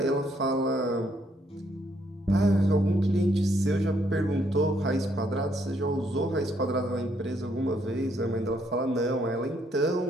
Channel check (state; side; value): normal; both; correlation 0.71